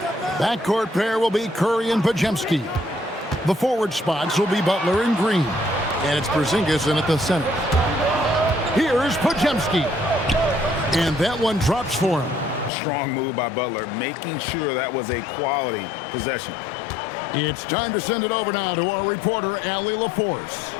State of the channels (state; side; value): drops out; right; at 12.7 s